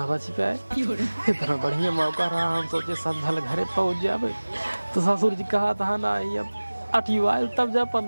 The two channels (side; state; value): both; inverted; correlation -1.00